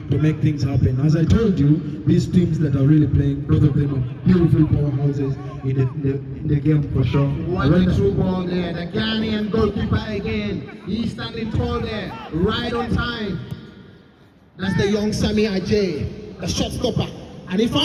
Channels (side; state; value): both; identical; correlation 1.00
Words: to make things happen. As I told you, these teams that are really playing, both of them are beautiful powerhouses in the game for sure. What a true ball there. The Ghanaian goalkeeper again. He's standing tall there, right on time. That's the young Sami Ajay, the shot stopper. And he